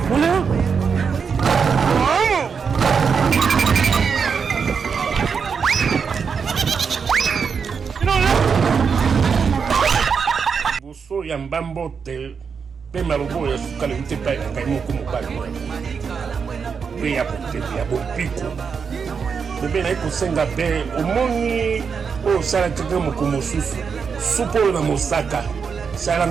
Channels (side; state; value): left; quieter; 6.0 dB